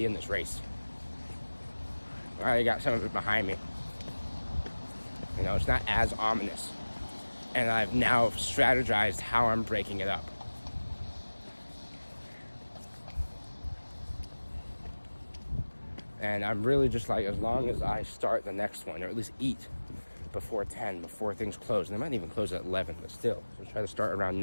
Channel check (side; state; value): both; inverted; correlation -1.00